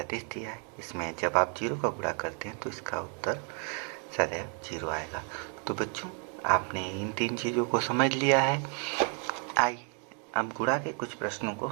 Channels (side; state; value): left; quieter; 39.2 dB